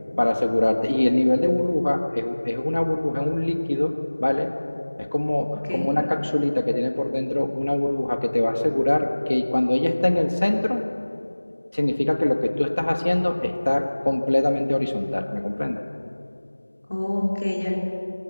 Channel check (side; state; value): both; inverted; correlation -1.00